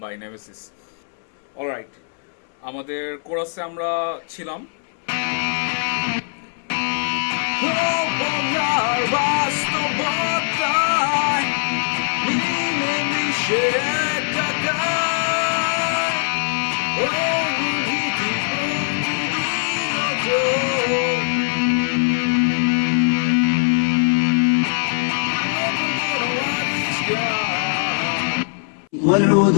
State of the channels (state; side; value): silent; right; 65 dB below the other